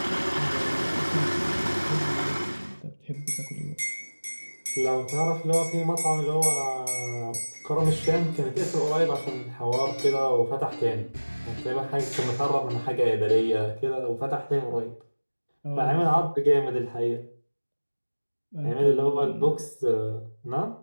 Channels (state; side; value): inverted; both; correlation -1.00